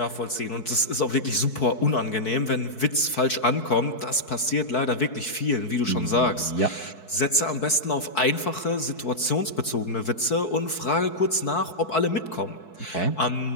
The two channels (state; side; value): late; right; 4.6 ms